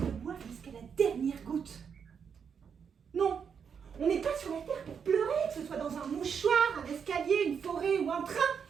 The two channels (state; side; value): quieter; left; 6.9 dB